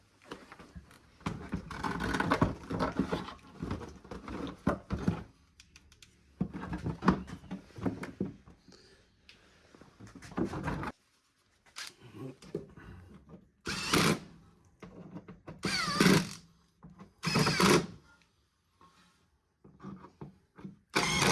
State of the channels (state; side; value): identical; both; correlation 1.00